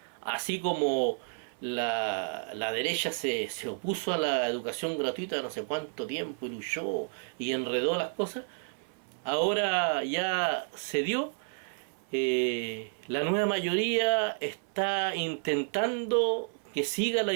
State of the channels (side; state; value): left; silent; 57 dB below the other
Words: Así como la derecha se opuso a la educación gratuita no sé cuánto tiempo y luchó y enredó las cosas, ahora ya se dio. La nueva mayoría está intentando que siga la